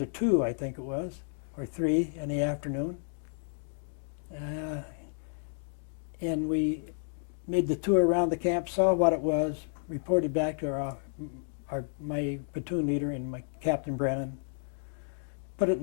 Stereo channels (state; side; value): silent; right; digital silence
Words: 2, I think it was, or 3 in the afternoon. And we made the tour around the camp, saw what it was, reported back to my platoon leader and my Captain Brennan, put it